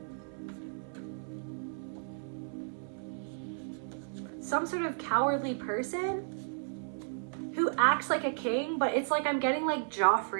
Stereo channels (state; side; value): silent; left; 55 dB below the other